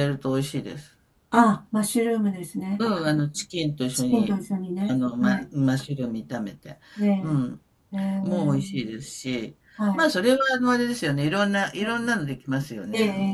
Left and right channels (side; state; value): both; identical; correlation 1.00